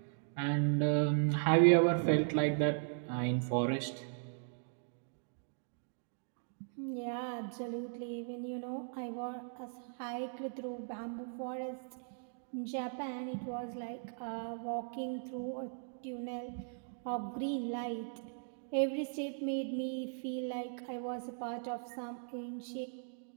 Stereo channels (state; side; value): silent; left; digital silence